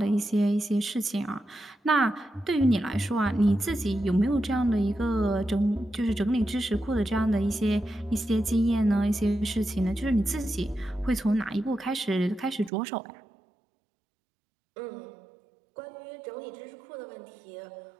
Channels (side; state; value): left; drops out; at 12.7 s